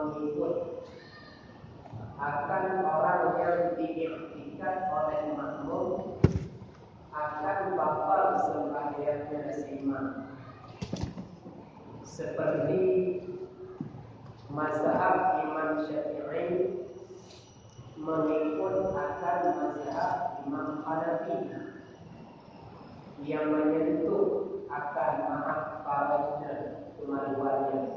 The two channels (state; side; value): identical; both; correlation 1.00